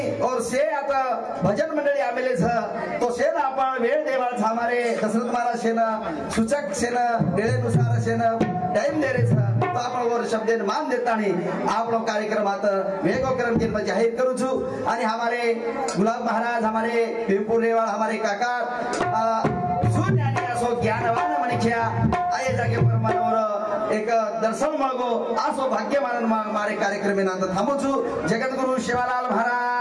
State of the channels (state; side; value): identical; both; correlation 1.00